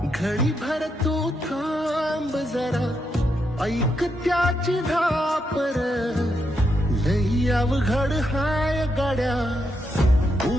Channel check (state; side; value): normal; both; correlation 0.81